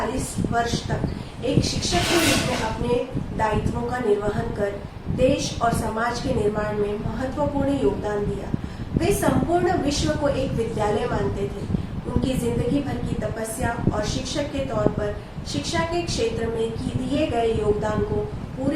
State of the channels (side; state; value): both; identical; correlation 1.00